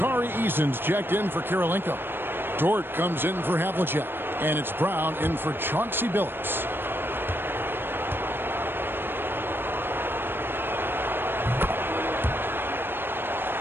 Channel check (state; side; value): late; left; 0.10 ms